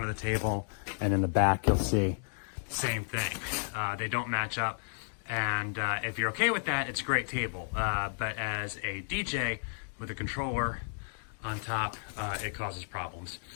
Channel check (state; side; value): silent; right; digital silence